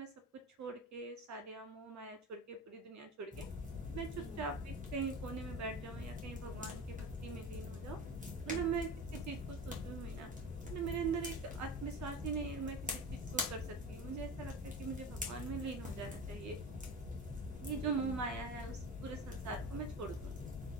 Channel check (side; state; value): both; normal; correlation 0.32